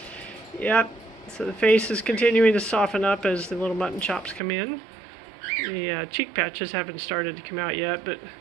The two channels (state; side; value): drops out; left; at 4.4 s